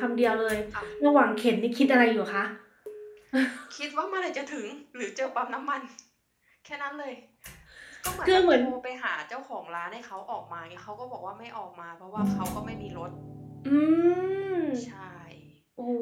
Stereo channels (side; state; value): both; identical; correlation 1.00